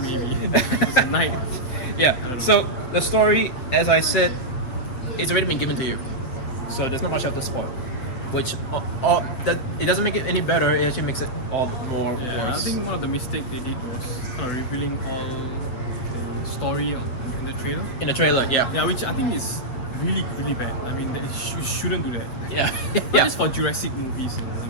maybe. It's a night. Yeah. don't know. So the story, as I said, it's already been given to you, so there's not much left to spoil. Which that it doesn't make it any better. It actually makes it all the more Yeah, worse. I think one of the mistakes they did was kind of revealing all the story in the trailer. In the trailer, yeah, Yeah, which I think is really, really bad. I mean, you shouldn't do that. yeah, Not yeah. just for Jurassic movies,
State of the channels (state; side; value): late; right; 8.1 ms